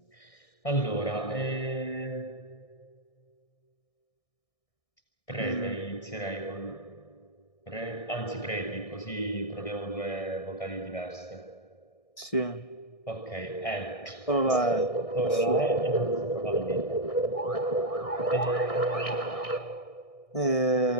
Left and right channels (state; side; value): late; right; 1.6 ms